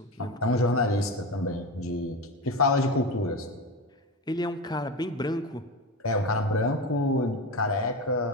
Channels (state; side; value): normal; both; correlation 0.22